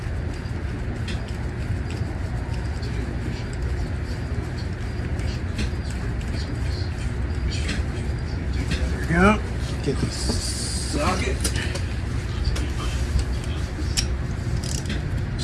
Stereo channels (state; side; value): identical; both; correlation 1.00